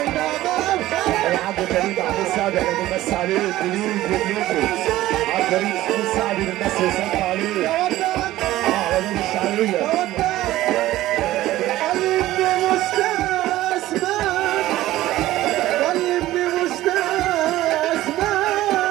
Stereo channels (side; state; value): left; quieter; 15.6 dB